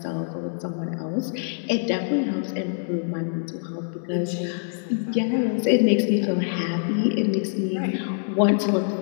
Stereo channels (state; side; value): silent; right; 62 dB below the other